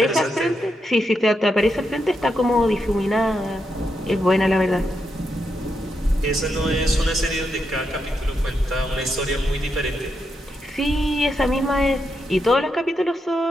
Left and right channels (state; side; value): normal; both; correlation 0.83